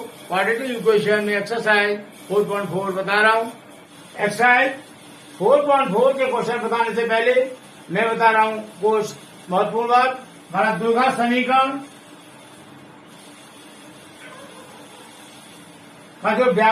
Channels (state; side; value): identical; both; correlation 1.00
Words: क्वाड्रेटिक इक्वेशन में एक्सरसाइज 4.4 बता रहा हूँ। एक्सरसाइज 4.4 के क्वेश्चन बताने से पहले मैं बता रहा हूँ कुछ महत्वपूर्ण बात। हमारा द्विघात समीकरण का जो